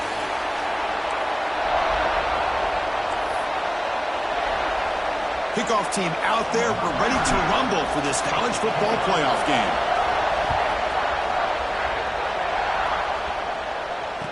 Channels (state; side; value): identical; both; correlation 1.00